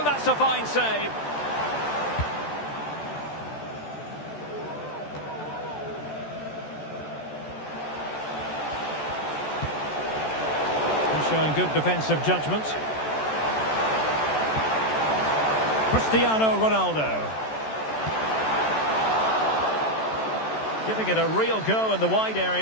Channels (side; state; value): right; late; 14 ms